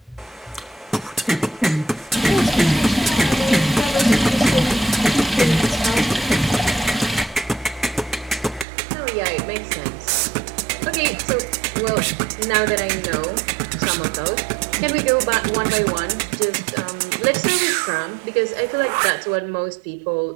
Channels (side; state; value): left; drops out; at 8.7 s